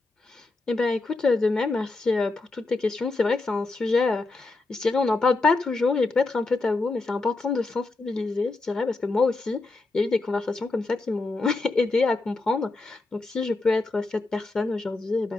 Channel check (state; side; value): quieter; right; 3.4 dB